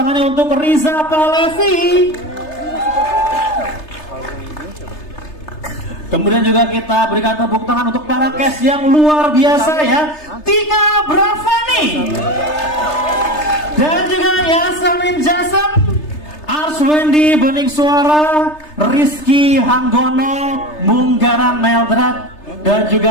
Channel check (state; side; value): late; right; 3.3 ms